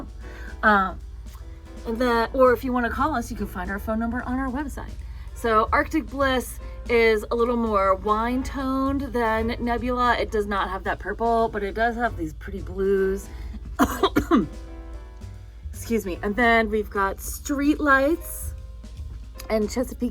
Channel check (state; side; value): identical; both; correlation 1.00